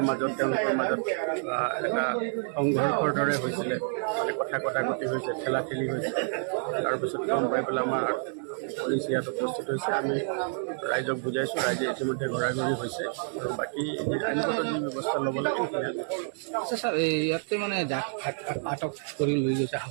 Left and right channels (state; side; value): silent; left; 59 dB below the other